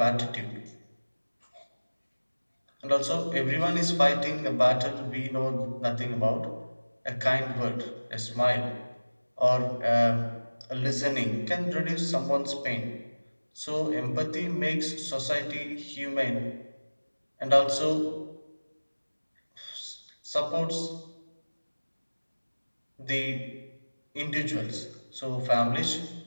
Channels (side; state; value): both; inverted; correlation -1.00